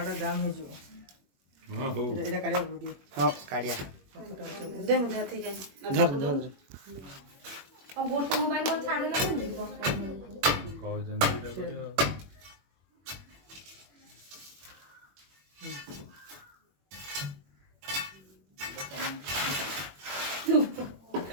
जाम हे जो हां हो एटा काढिया वीडियो हां काढ़िया दे मुझे ठीक है धर और गोटे मोबाइल को छाड़ देला कह जन एटा करियो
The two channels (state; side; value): late; left; 21 ms